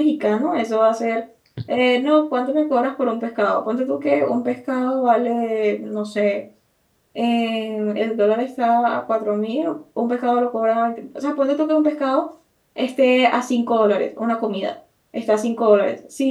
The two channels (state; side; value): identical; both; correlation 1.00